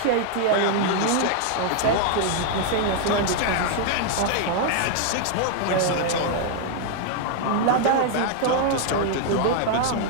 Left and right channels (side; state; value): both; different; correlation 0.00